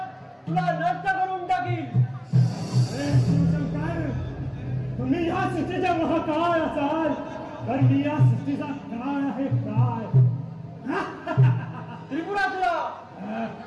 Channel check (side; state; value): both; identical; correlation 1.00